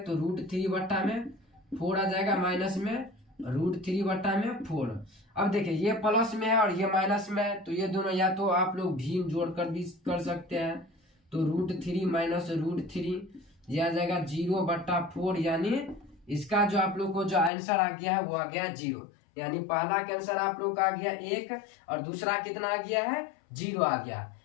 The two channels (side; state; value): right; drops out; at 17.5 s